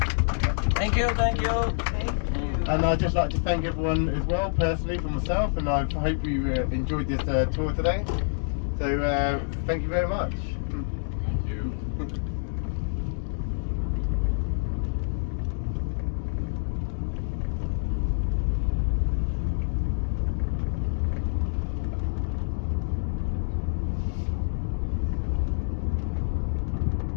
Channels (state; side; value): silent; right; digital silence